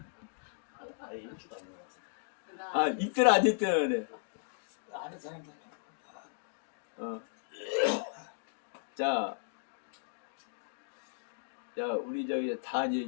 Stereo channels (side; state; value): right; silent; digital silence